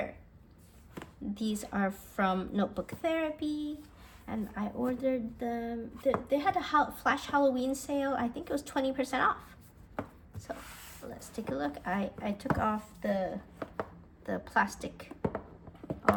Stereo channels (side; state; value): both; identical; correlation 1.00